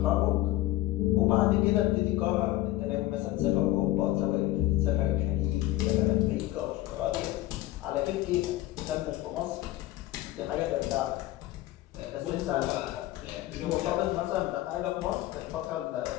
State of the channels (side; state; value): right; quieter; 16.0 dB